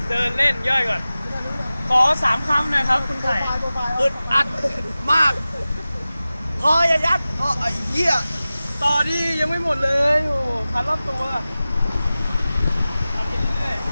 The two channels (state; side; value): inverted; both; correlation -0.96